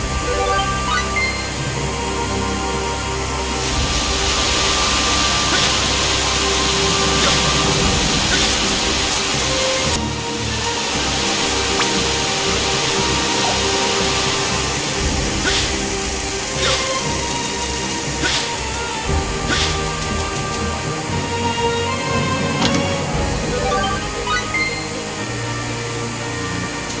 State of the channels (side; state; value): both; identical; correlation 1.00